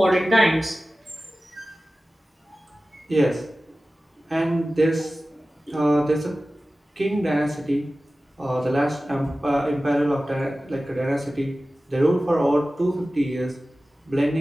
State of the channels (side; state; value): both; normal; correlation 0.96